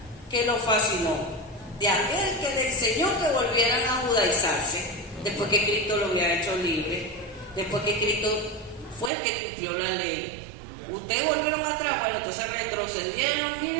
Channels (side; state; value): left; drops out; at 9.1 s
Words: que los fascinó. De aquel que le enseñó que volvieran a judaizarse, después que Cristo lo había hecho libre, después que Cristo fue el que cumplió la ley. Ustedes volvieron atrás, bueno, entonces retrocedieron,